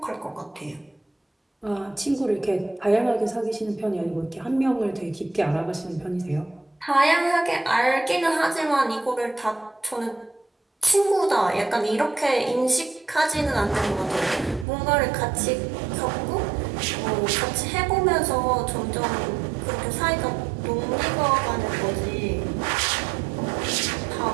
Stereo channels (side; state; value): left; drops out; at 14.7 s